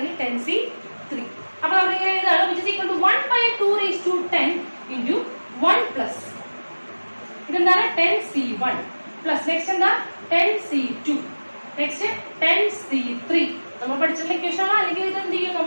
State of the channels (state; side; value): inverted; both; correlation -1.00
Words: 10c3. അപ്പൊ നമ്മൾ ഇങ്ങനെ എഴുതാണ് which is equal to 1 by 2 raised to 10 into 1 plus ഇതെന്താണ്? 10c1 plus നെക്സ്റ്റ് എന്താ? 10c2 next 10c3. നമ്മൾ പഠിച്ചിട്ടുള്ള ഇക്വേഷൻ ആണ്. അല്ലെങ്കിൽ ഇത് എന്ത് ചെയ്യും?